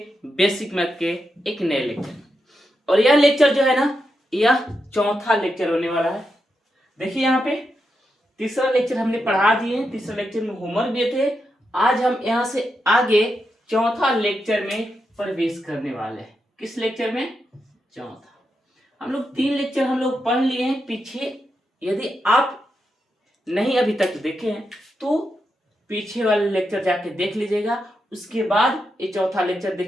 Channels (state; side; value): normal; both; correlation 0.85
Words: बेसिक मैथ के एक नए लेक्चर। और यह लेक्चर जो है ना, यह चौथा लेक्चर होने वाला है। देखिए यहाँ पे तीसरा लेक्चर हमने पढ़ा दिए, तीसरा लेक्चर में होमवर्क दिए थे। आज हम यहाँ से आगे चौथा लेक्चर में प्रवेश करने वाले हैं। किस लेक्चर में? चौथा। हम लोग 3 लेक्चर हम लोग पढ़ लिए हैं पीछे। यदि आप नहीं अभी तक देखे हैं तो पीछे वाले लेक्चर जाके देख लीजिएगा, उसके बाद ये चौथा लेक्चर